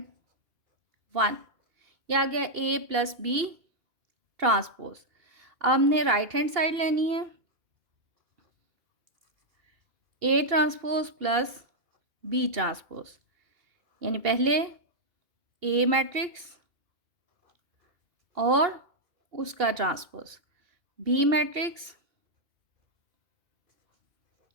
1, ये आ गया a + b ट्रांसपोज। अब हमने राइट हैंड साइड लेनी है, a ट्रांसपोज + b ट्रांसपोज, यानी पहले a मैट्रिक्स और उसका ट्रांसपोज, b मैट्रिक्स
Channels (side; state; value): left; late; 2.8 ms